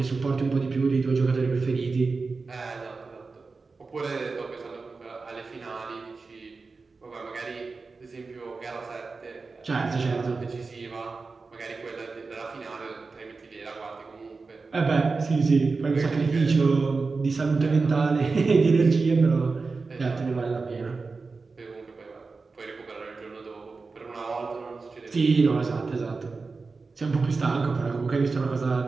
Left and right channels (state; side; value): quieter; left; 4.2 dB